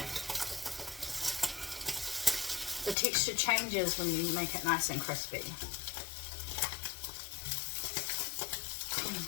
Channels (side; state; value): right; drops out; at 3.0 s